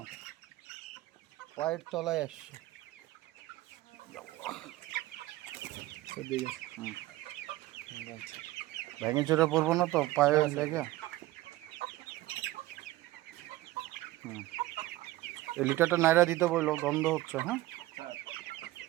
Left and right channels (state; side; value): quieter; left; 16.9 dB